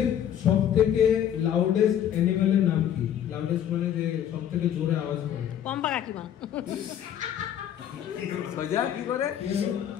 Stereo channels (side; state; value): right; quieter; 10.0 dB